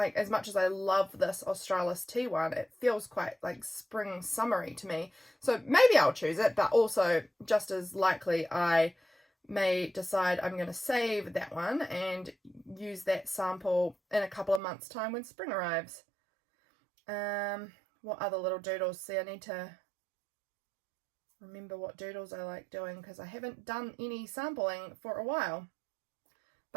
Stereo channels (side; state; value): left; drops out; at 14.6 s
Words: as much as I love this Australis tea one, it feels quite like spring summery to me, so maybe I'll choose it, but also just as likely I may decide I'm going to save that one and use that sample in a couple of months time when spring arrives. What other little doodles? See, I need to remember what doodles I like doing, because I haven't done any sampling for a while.